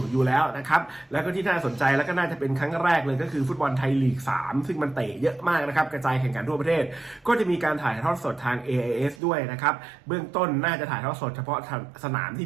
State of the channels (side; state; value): left; drops out; at 9.2 s